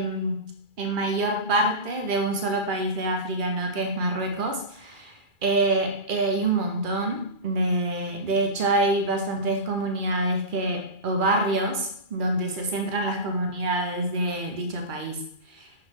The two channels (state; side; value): late; left; 2.4 ms